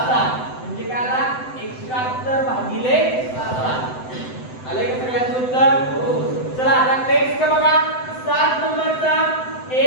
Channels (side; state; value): right; late; 7.9 ms